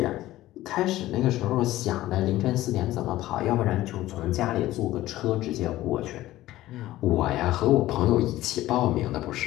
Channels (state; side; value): quieter; right; 15.7 dB